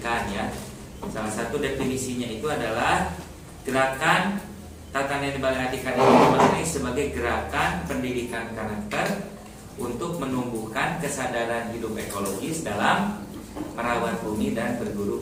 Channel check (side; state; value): both; identical; correlation 1.00